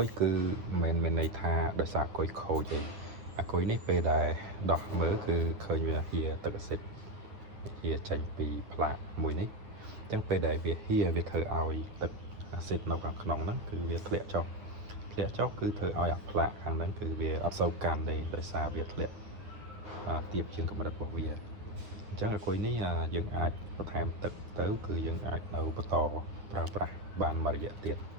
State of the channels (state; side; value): late; left; 9.7 ms